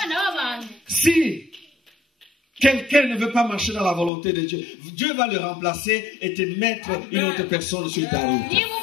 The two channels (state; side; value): drops out; right; at 4.1 s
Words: b'abantu Si quelqu'un ne veut pas marcher dans la volonté de Dieu, Dieu va le remplacer et te mettre une autre personne sur ta route. niba